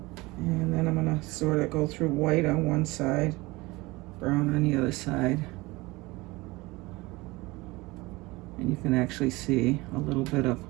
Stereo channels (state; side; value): quieter; left; 22.1 dB